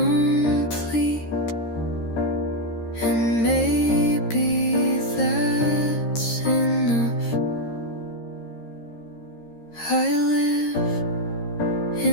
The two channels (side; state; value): right; late; 13 ms